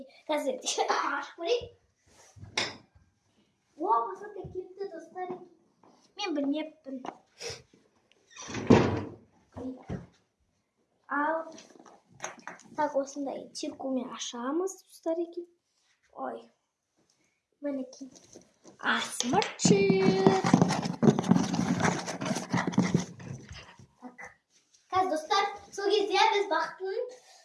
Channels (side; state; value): both; identical; correlation 1.00